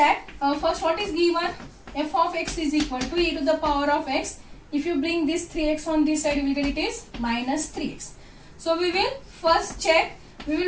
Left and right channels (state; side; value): identical; both; correlation 1.00